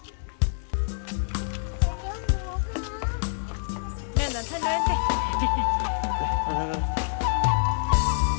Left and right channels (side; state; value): right; silent; digital silence